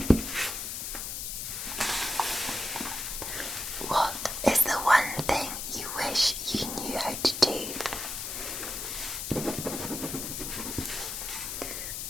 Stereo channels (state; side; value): noise; left; hiss, 4 dB below the sound